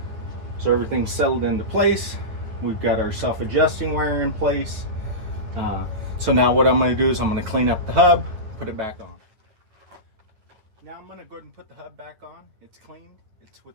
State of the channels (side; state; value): left; late; 9.7 ms